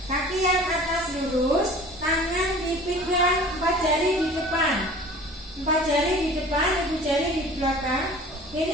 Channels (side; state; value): both; normal; correlation 0.44